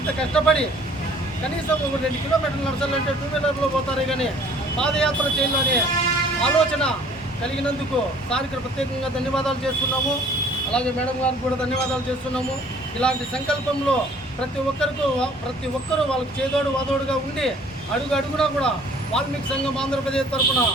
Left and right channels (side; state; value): both; normal; correlation 0.54